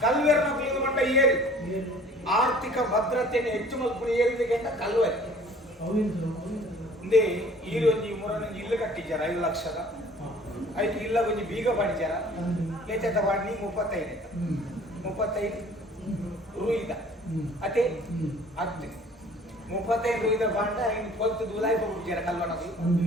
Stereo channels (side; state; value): both; normal; correlation 0.51